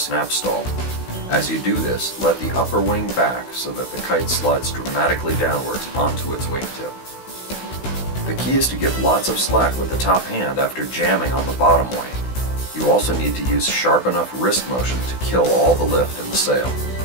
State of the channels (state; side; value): late; right; 16 ms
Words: stall. As you do this, let the upper wing back so that the kite slides dramatically downwards onto its wingtip. The key is to give lots of slack with the top hand after jamming on the bottom wing. You also need to use sharp enough wrist motion to kill all the lift in the sail.